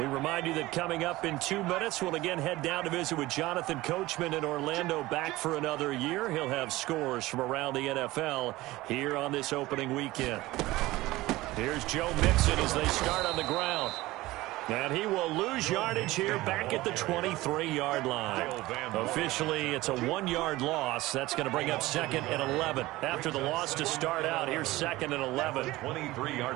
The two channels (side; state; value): left; quieter; 18.6 dB